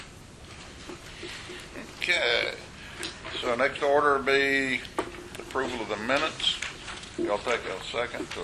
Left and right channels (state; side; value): identical; both; correlation 1.00